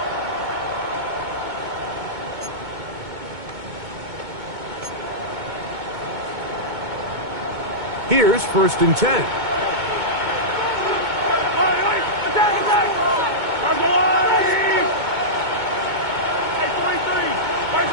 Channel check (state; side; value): late; left; 2.2 ms